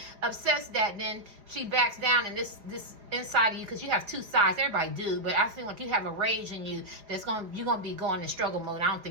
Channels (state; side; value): late; left; 5.0 ms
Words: upsets that, then she backs down, and this inside of you, because you have two sides. Everybody do, but I feel like you have a rage in you you're gonna be going in struggle mode. I don't